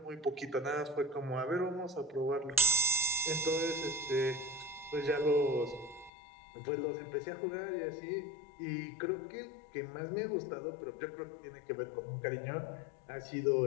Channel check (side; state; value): right; drops out; at 6.1 s